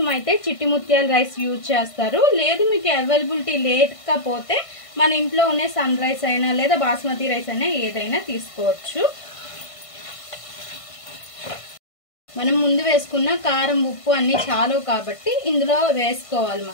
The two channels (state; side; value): late; right; 1.5 ms